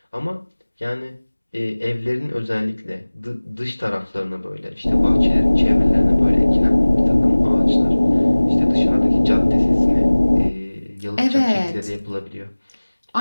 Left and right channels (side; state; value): both; inverted; correlation -1.00